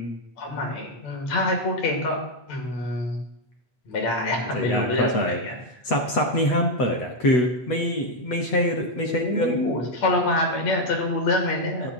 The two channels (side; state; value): right; late; 8.1 ms